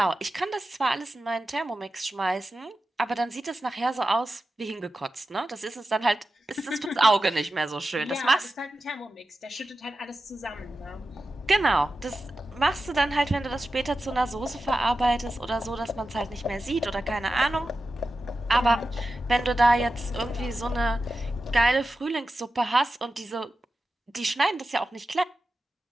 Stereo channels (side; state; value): both; normal; correlation 0.92